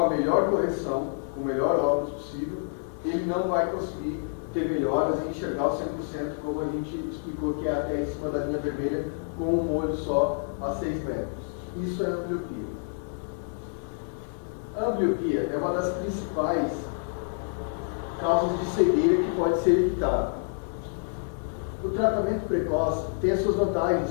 melhor correção, com o melhor óculos possível, ele não vai conseguir ter melhoras e enxergar o 100%, como a gente explicou, que é até em cima da linha vermelha, com um olho só a 6 metros. Isso é a ambliopia. A ambliopia é uma das principais causas de cegueira que pode ser evitada. O tratamento precoce tem as suas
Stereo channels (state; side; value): silent; right; digital silence